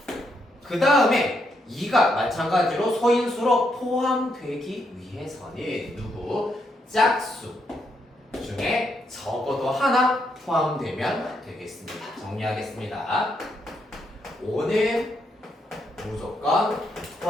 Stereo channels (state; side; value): normal; both; correlation 0.78